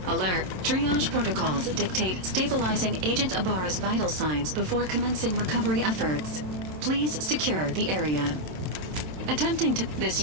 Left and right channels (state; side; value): late; left; 27 ms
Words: Alert. Triage protocols dictate stabilizing Agent Ibarra's vital signs before commencing recovery efforts. Please secure the area. Attempting to